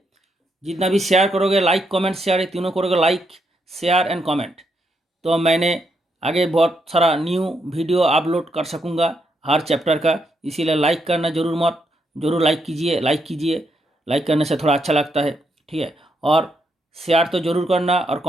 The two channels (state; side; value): normal; both; correlation 0.79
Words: जितना भी शेयर करोगे, लाइक कमेंट शेयर, ये तीनों करोगे, लाइक शेयर एंड कमेंट, तो मैंने आगे बहुत सारा न्यू वीडियो अपलोड कर सकूँगा हर चैप्टर का। इसीलिए लाइक करना ज़रूर लाइक कीजिए। लाइक करने से थोड़ा अच्छा लगता है। ठीक है, और शेयर तो जरूर करना, और